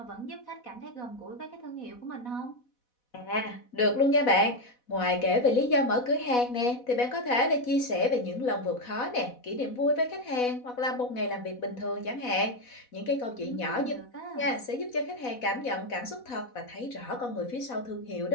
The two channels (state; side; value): late; right; 4.1 ms